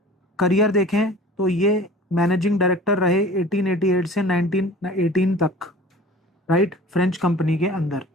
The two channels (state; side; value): normal; both; correlation 0.43